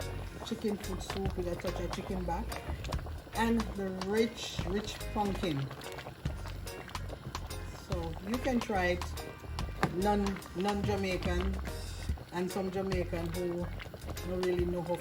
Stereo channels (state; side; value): identical; both; correlation 1.00